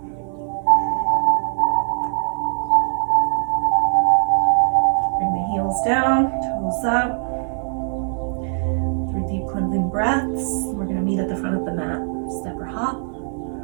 Bring the heels down, toes up. 3 deep cleansing breaths. We're going to meet at the front of the mat. Step or hop.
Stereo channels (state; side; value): silent; left; 57 dB below the other